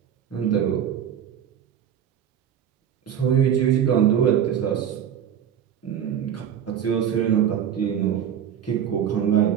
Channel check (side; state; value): left; quieter; 9.2 dB